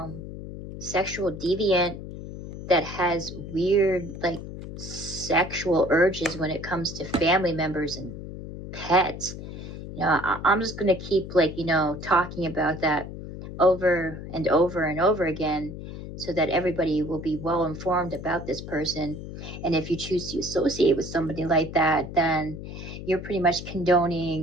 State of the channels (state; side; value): noise; left; hum, 10 dB below the sound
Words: sexual deviant that has weird, like, sexual urges when it comes to family members and pets. You know, I'm just gonna keep, like, you know, talking about that over and over and over again, so that everybody will be well informed about this person. And if you choose to associate with somebody like that, then you're pretty much